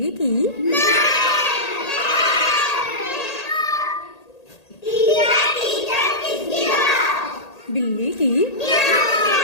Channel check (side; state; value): right; late; 1.8 ms